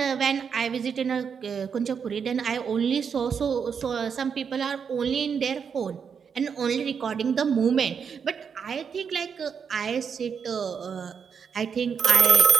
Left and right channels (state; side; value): quieter; left; 6.7 dB